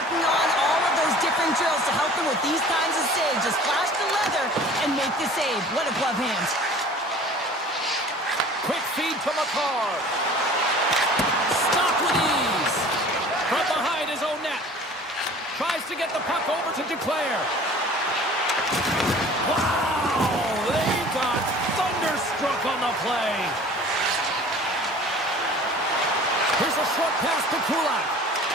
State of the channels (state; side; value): normal; both; correlation 0.46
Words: on all of those different drills to help them with these kinds of saves. Just flash the leather and make the save. What a glove hand. Quick feed to McCarr. Stop with ease. From behind his own net. Tries to get the puck over to Duclair. Wow! They got thunderstruck on the play. Here's a short pass to Kulak.